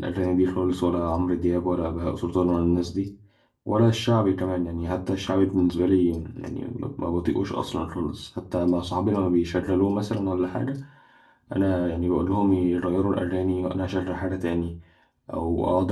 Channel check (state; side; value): identical; both; correlation 1.00